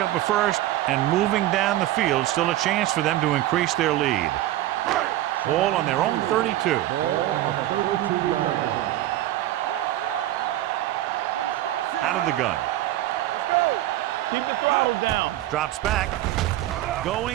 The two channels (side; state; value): left; quieter; 14.7 dB